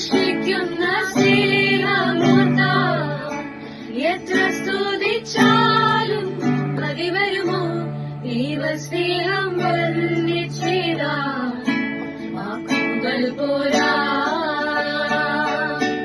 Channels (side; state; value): both; identical; correlation 1.00